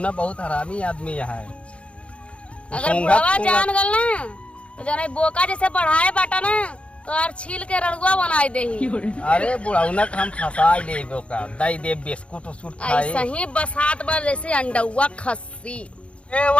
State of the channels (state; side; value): late; right; 0.060 ms